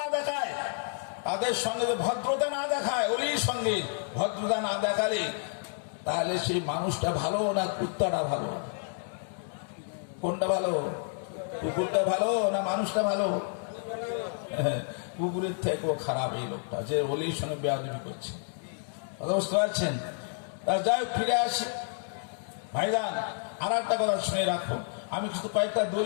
দেখায়, তাদের সঙ্গে যদি ভদ্রতা না দেখায়, অলির সঙ্গে ভদ্রতা না দেখালে তাহলে সেই মানুষটা ভালো না কুত্তাটা ভালো? কোনটা ভালো? কুকুরটা ভালো না মানুষটা ভালো? কুকুরের থেকেও খারাপ এই লোকটা, যে অলির সঙ্গে বেয়াদবি করছে। কথা বুঝতে পারছেন? যাই হোক, ফিরে আসি ভাইজান। আর একটা কথা শুনে রাখো, আমি কিছু কয়েকটা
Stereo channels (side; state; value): right; silent; 58 dB below the other